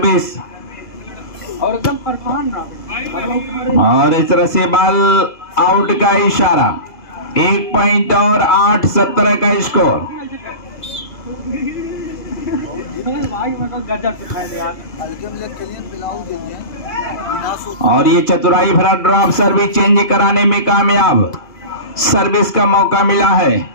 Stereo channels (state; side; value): late; right; 2.3 ms